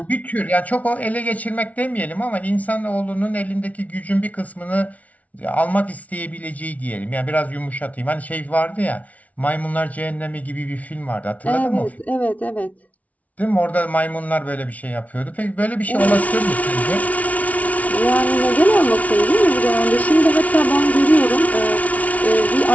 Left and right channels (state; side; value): late; right; 0.069 ms